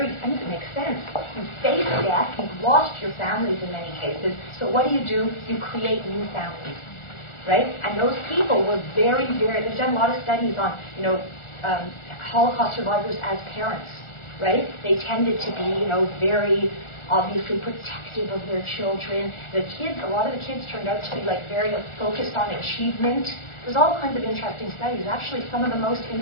it makes sense. You face death, you've lost your families in many cases, so what do? You create new families, right? And those people were very, very, they've done a lot of studies on, Holocaust survivors as parents, right? They tended to be, very obviously protective of their children. A lot of the kids turned out to be like very focused on achievement. There's all kinds of interesting studies. Actually, some of the most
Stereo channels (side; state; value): right; late; 1.4 ms